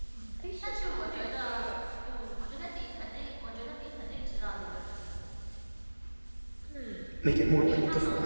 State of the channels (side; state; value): both; inverted; correlation -1.00